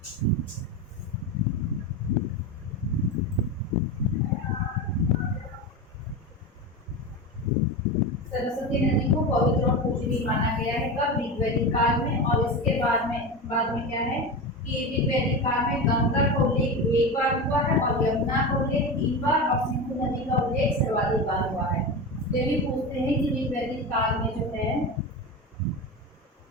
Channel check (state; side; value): normal; both; correlation 0.23